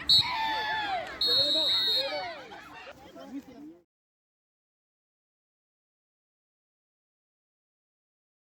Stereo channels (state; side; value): identical; both; correlation 1.00